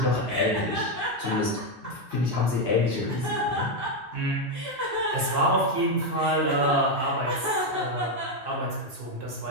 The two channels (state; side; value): normal; both; correlation 0.05